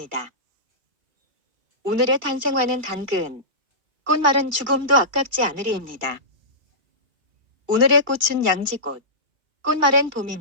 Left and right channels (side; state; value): left; late; 2.3 ms